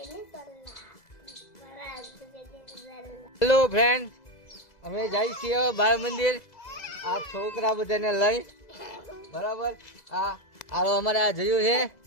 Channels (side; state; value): right; late; 2.0 ms